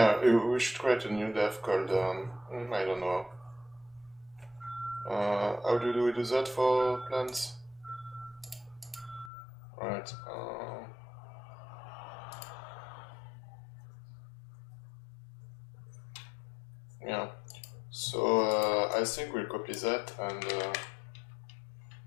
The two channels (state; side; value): drops out; right; at 9.3 s